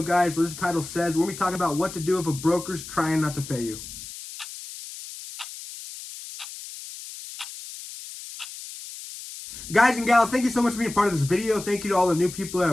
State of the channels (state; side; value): noise; left; hiss, 12 dB below the sound